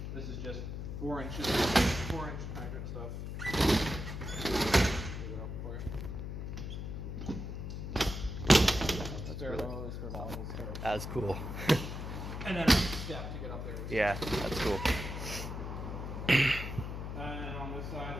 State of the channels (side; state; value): left; noise; hum, 5 dB below the sound